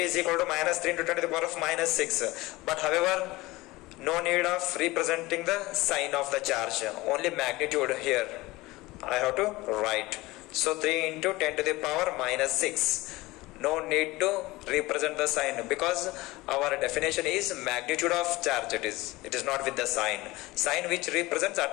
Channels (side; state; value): right; quieter; 20.4 dB